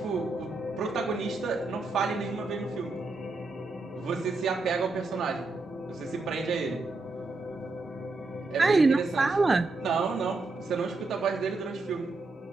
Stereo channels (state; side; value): quieter; left; 3.4 dB